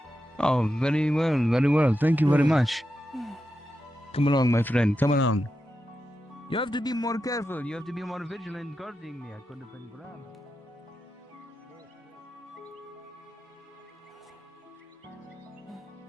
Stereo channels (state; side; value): normal; both; correlation 0.88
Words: Oh, very well, very well. Thank you very much. Come along, my friend. Come along. You have to be more careful. You have to be more vigilant guarding me. I could have been grabbed.